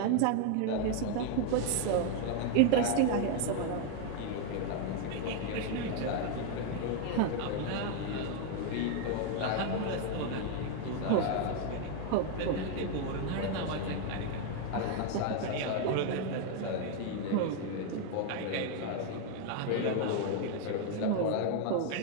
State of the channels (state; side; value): different; both; correlation 0.01